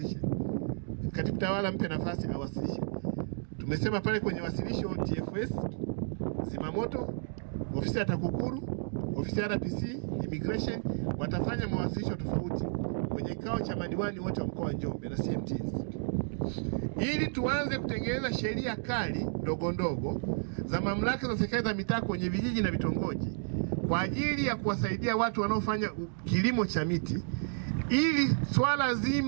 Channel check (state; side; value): silent; left; digital silence